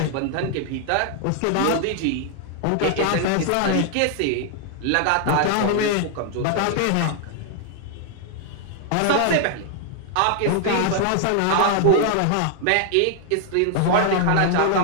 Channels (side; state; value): both; different; correlation 0.00